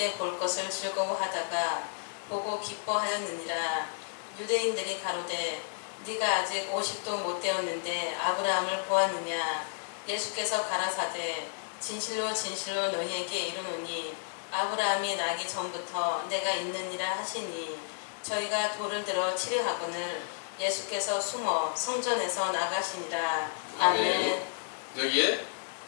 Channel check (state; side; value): silent; right; digital silence